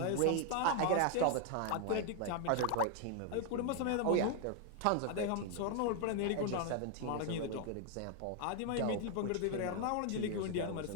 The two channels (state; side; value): different; both; correlation 0.00